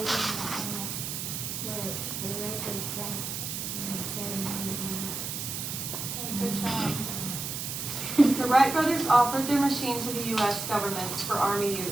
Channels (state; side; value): noise; right; hiss, 5 dB below the sound